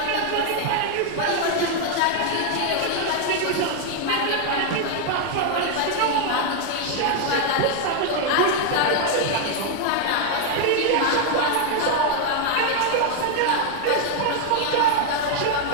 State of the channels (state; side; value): different; both; correlation 0.00